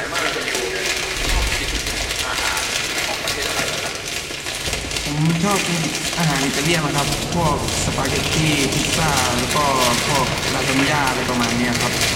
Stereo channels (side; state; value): both; identical; correlation 1.00